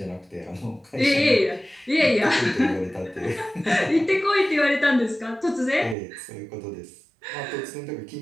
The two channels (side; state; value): left; drops out; at 6.0 s